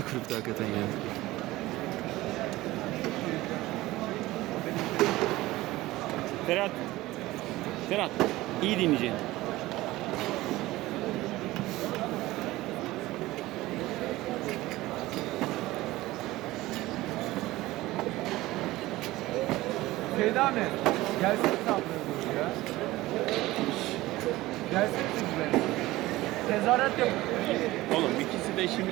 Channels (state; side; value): quieter; left; 18.0 dB